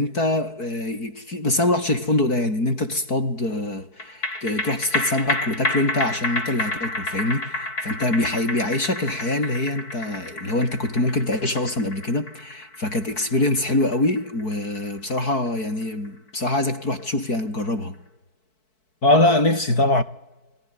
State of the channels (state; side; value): late; right; 4.6 ms